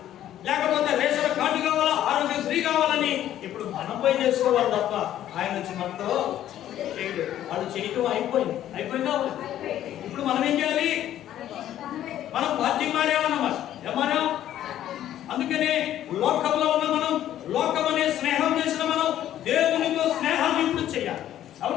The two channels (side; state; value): right; quieter; 11.9 dB